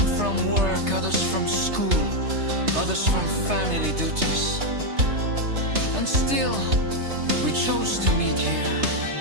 work, others from school, others from family duties. And still, we chose to meet here.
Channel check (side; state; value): left; late; 3.3 ms